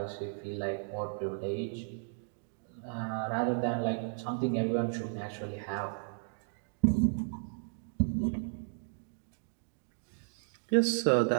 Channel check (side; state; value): left; silent; digital silence